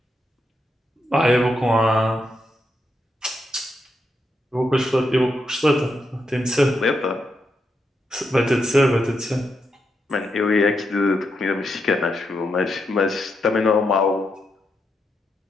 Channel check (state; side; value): normal; both; correlation 0.83